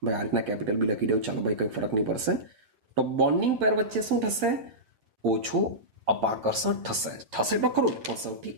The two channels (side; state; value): left; late; 9.3 ms